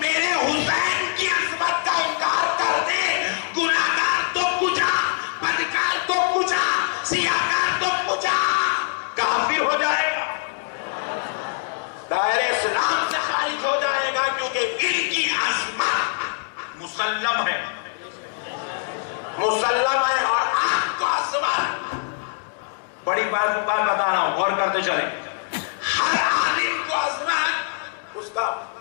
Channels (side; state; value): right; silent; digital silence